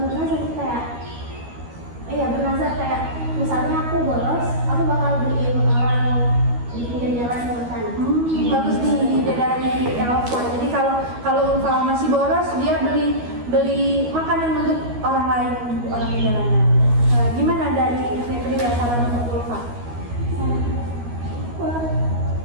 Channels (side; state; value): left; late; 12 ms